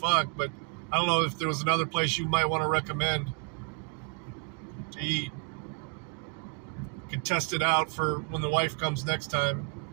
but I don't know if there was another place you might want to recommend to eat. Could test it out for when the wife comes next time.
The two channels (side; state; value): left; quieter; 35.4 dB